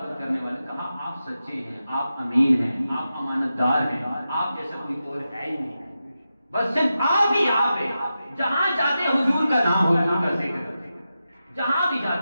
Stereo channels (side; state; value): both; inverted; correlation -0.91